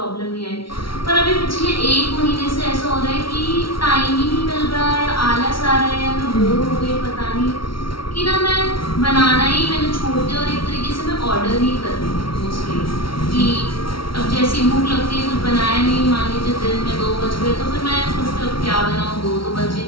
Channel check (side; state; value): right; late; 0.74 ms